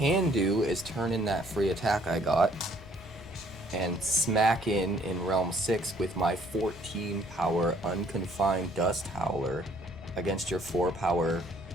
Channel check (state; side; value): noise; left; rumble, 17 dB below the sound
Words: do is turn in that free attack I got and smack in Realm 6 with my 14 power Unconfined Dust Howler against your 4 power